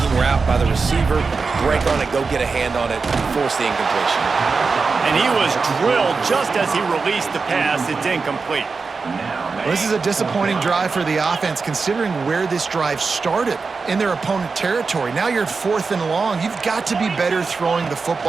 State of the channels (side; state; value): left; quieter; 4.6 dB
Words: route by the receiver, break on it, go get a hand on it, force the incompletion. And he was drilled just as he released the pass. It's incomplete. Well, this is a disappointing drive for the offense considering where this drive started in their opponent territory. Now you're at 4th and long. You've got to be better throwing the